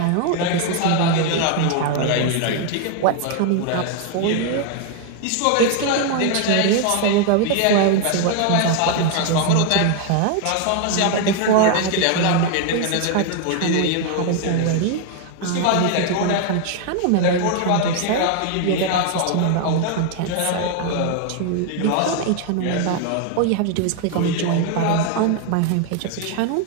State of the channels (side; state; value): both; different; correlation 0.00